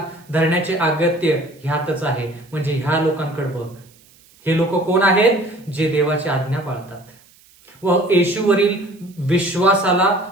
धरण्याचे अगत्य ह्यातच आहे. म्हणजे ह्या लोकांकडे बघ. हे लोक कोण आहेत? जे देवाची आज्ञा पाळतात व येशूवरील विश्वासाला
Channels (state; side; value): noise; right; hiss, 29 dB below the sound